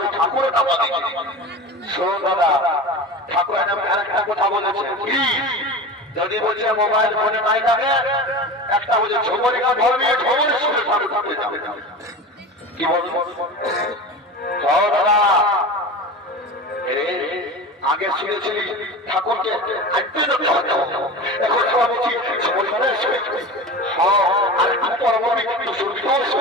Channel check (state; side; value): normal; both; correlation 0.30